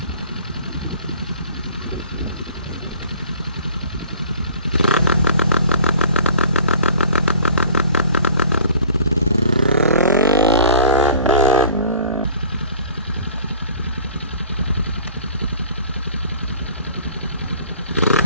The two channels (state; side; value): inverted; both; correlation -0.48